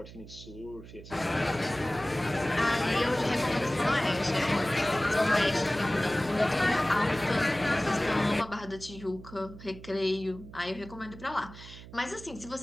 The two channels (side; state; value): right; noise; hum, 16 dB below the sound